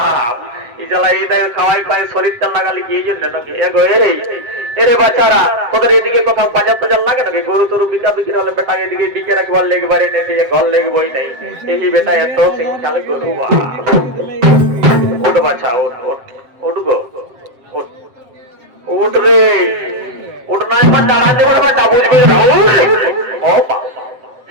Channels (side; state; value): left; late; 7.5 ms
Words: এই জ্বালা এই দেখ খাওয়াই পায় শরীরটা লাগালি কি এই জন্য নাকি এগো এই এরে বাচ্চারা তোদের এদিকে কোথাও বাজার টাজার লাগে নাকি গরু তরু বিকা বিক্রি হলে বেটা এদিকে বিকে রাখবার লেগবারে নেই ঘর লেগবই নাই এই বেটা এত শিক্ষালে গরু উঠ বাচ্চা উঠ উঠ উঠ গো উঠ উঠ রে উঠ নয় মা দাঁড়া দেবার বেটা বুঝবি ও